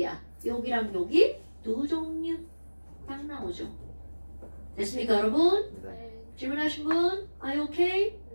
여기랑 여기 두 종류 딱 나오죠. 됐습니까, 여러분? 네. 질문하신 분? Are you okay?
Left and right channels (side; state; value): both; inverted; correlation -1.00